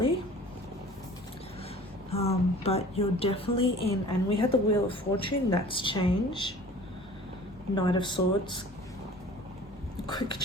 But you're definitely in, and we had the Wheel of Fortune, that's change. Knight of Swords, quick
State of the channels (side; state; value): both; normal; correlation 0.46